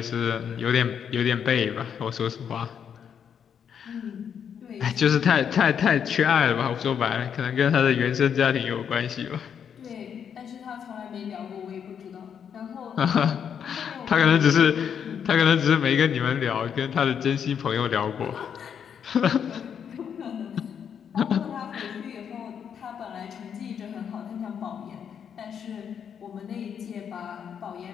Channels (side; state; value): right; quieter; 7.9 dB